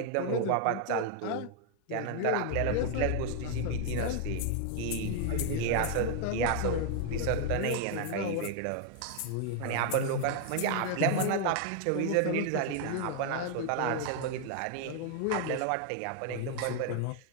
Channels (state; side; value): different; both; correlation 0.00